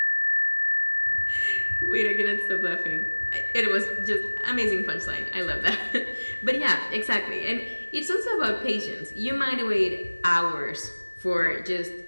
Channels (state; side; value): inverted; both; correlation -1.00